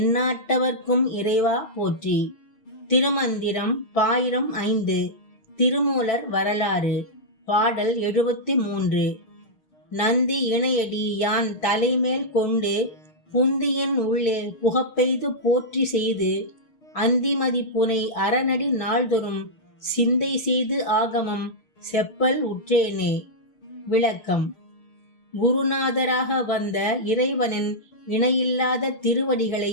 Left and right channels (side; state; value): right; late; 6.1 ms